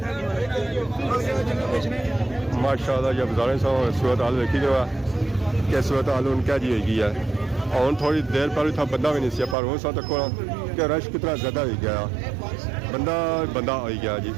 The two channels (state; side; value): drops out; left; at 9.6 s